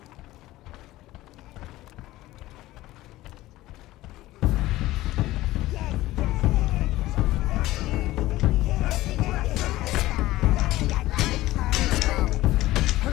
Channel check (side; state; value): right; quieter; 16.8 dB